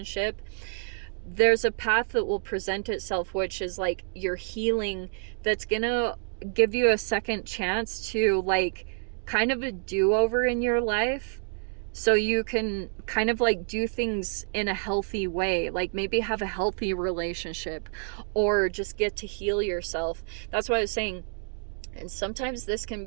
there's a path that will present itself, which is like your healing, that's gonna give you a second chance to like kind of a do-over in your life, so you can kind of like do things in a healthy way, like maybe have a healthy relationship or just get to heal yourself. That's why I was saying. And sometimes this can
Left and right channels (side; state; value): left; silent; 59 dB below the other